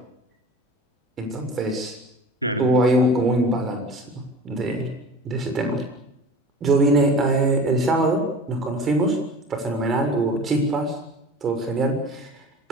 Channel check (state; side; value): normal; both; correlation 0.39